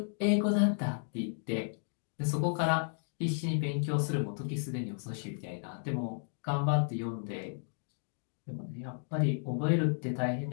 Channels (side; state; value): right; silent; digital silence